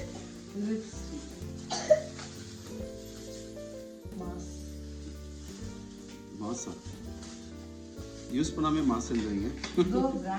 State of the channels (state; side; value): identical; both; correlation 1.00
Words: Lipstick. Mask. மாசா யூஸ் பண்ணாமே மாசுன்றீங்க. Go